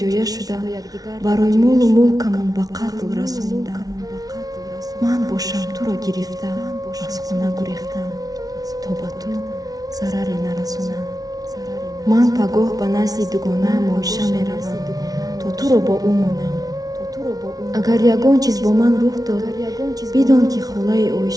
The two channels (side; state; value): left; late; 0.18 ms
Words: шуда барои молу мулкамон ба қатл расониданд. ман бошам туро гирифта аз хона гурехтам то ба ту зараре нарасонам. ман пагоҳ ба назди дугонаам оиша меравам то туро бо ӯ монам. агар ягон чиз бо ман рух дод, бидон ки холаи